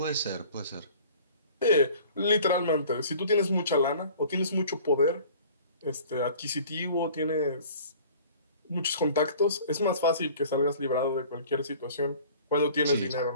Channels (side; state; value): both; inverted; correlation -0.48